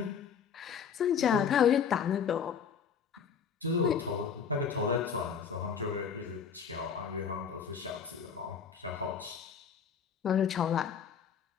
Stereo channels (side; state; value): right; quieter; 7.0 dB